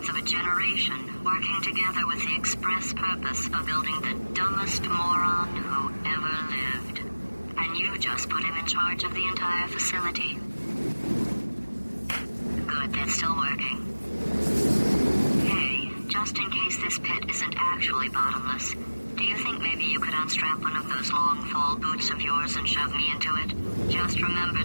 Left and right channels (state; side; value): inverted; both; correlation -1.00